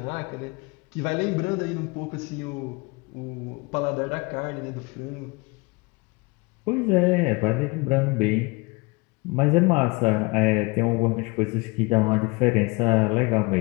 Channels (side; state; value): right; quieter; 26.3 dB